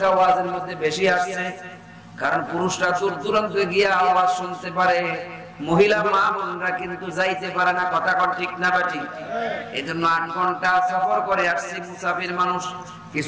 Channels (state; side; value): identical; both; correlation 1.00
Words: ওয়াজের মধ্যে বেশি আসছে, কারণ পুরুষরা দূর দূরান্তে গিয়ে আওয়াজ শুনতে পারে, মহিলা মা বোনরা কিন্তু যাইতে পারে না। কথা কর ঠিক না বাটি? এই জন্য 8 ঘন্টা সফর করে আসছি মুসাফির মানুষ।